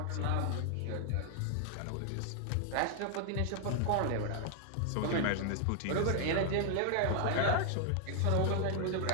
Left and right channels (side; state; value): both; different; correlation 0.00